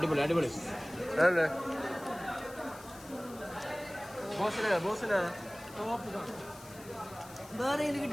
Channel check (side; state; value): left; noise; hiss, 19 dB below the sound